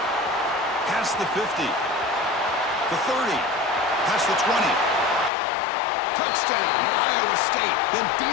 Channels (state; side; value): drops out; right; at 5.3 s